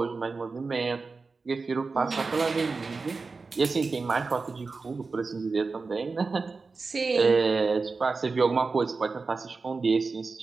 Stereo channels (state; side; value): quieter; left; 4.2 dB